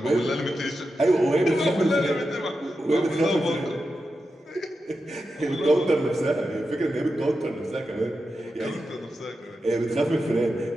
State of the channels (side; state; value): both; normal; correlation 0.89